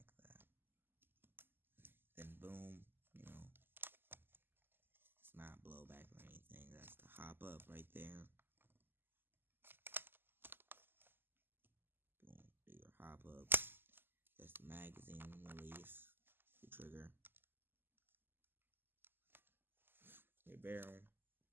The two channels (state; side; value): late; left; 0.097 ms